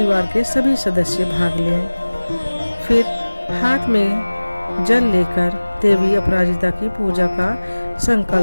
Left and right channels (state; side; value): inverted; both; correlation -1.00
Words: के सभी सदस्य भाग लें। फिर हाथ में जल लेकर देवी अपराजिता की पूजा का